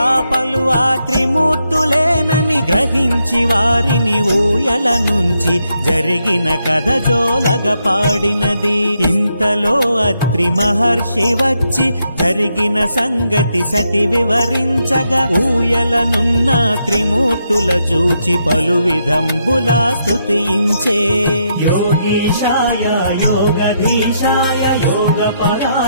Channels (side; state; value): both; inverted; correlation -0.79